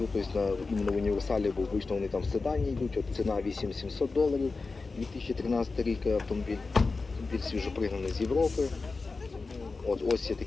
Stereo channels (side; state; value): right; quieter; 4.0 dB